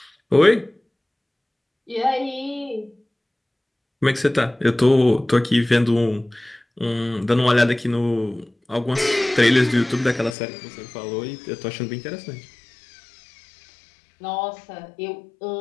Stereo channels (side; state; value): right; drops out; at 10.4 s